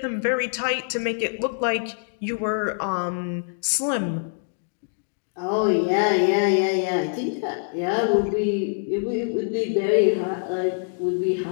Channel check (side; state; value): right; silent; digital silence